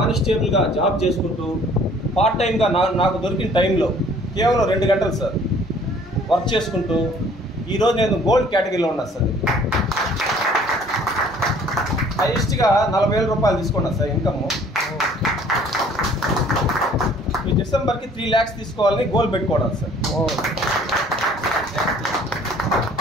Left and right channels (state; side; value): normal; both; correlation 0.55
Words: జాబ్ చేసుకుంటూ పార్ట్ టైంగా నాకు దొరికిన టైంలో కేవలం 2 గంటలు సార్ వర్క్ చేసుకుంటూ ఈరోజు నేను గోల్డ్ కేటగిరీలో ఉన్నాను సార్. హైయెస్ట్గా 40,000 రూపాయలు తీసుకున్నాను సార్ ఇన్కమ్. ఈ డిసెంబర్కి 3 lakhs తీసుకోవాలని గోల్ పెట్టుకోవడం సార్.